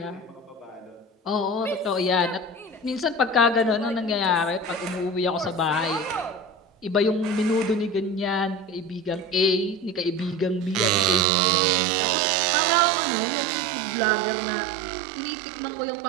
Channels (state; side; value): drops out; left; at 11.2 s